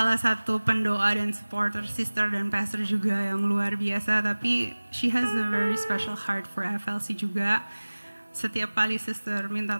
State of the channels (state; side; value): inverted; both; correlation -1.00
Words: satu pendoa dan supporter sister dan pastor juga yang luar biasa. Tapi she has a very special heart for FLC juga. Setiap kali sister